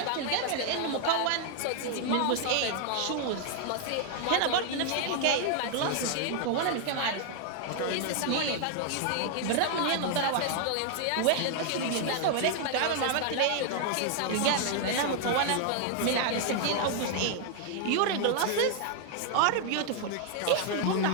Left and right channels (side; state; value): both; different; correlation 0.00